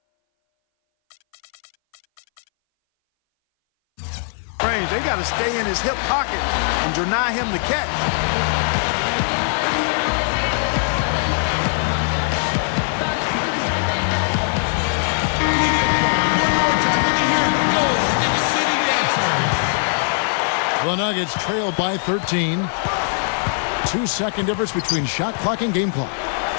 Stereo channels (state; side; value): silent; right; 60 dB below the other